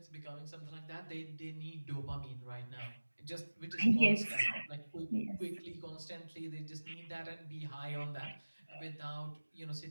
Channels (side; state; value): both; inverted; correlation -1.00